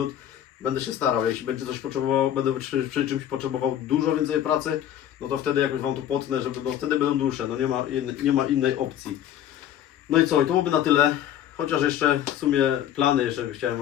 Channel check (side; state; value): right; quieter; 10.9 dB